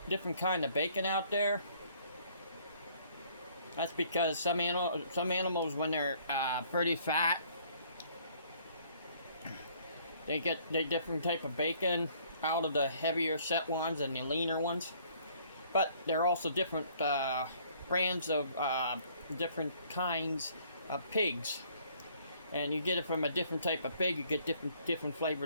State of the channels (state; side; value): inverted; both; correlation -0.60